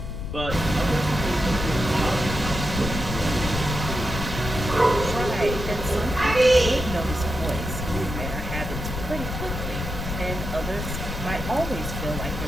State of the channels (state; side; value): noise; left; rumble, 5 dB below the sound